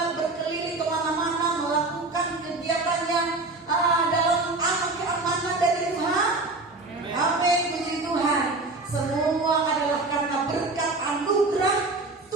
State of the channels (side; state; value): left; quieter; 3.3 dB